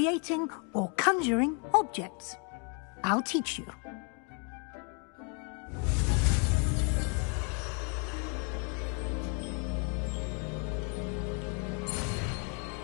or conjuring objects. I'll teach you.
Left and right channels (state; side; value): quieter; right; 37.9 dB